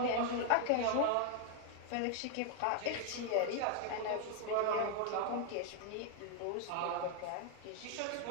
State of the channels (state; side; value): different; both; correlation 0.00